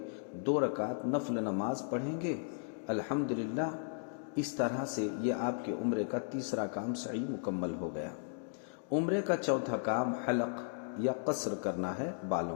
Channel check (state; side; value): silent; right; digital silence